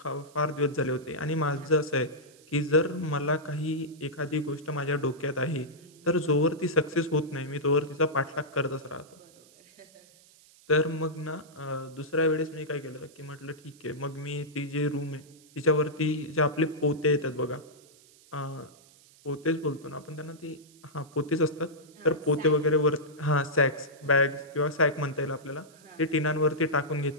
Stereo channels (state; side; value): noise; right; hiss, 26 dB below the sound